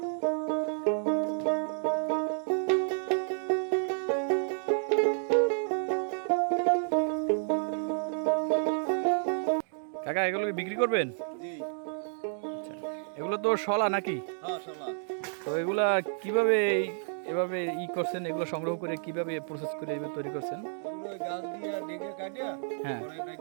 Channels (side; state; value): left; silent; digital silence